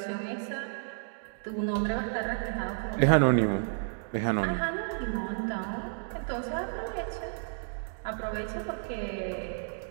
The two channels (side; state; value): left; silent; 57 dB below the other